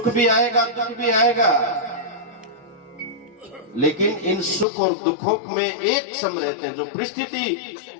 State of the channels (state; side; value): drops out; right; at 4.7 s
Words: भी आएगा दुख भी आएगा, लेकिन इन सुख और दुखों में एक सम रहते हैं। जो परिस्थिति